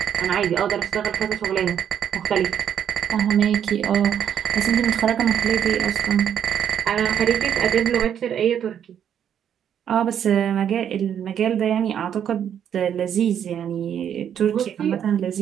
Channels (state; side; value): quieter; left; 9.1 dB